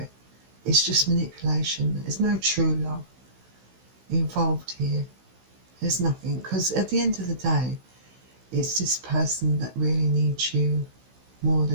It's just manipulation. There's no true love involved here. There's nothing, because at the end of the day, it's this person that really needs you more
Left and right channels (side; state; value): left; late; 16 ms